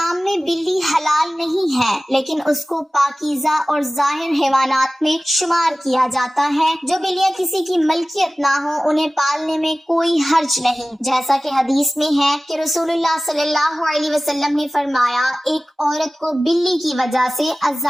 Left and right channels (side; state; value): both; normal; correlation 0.97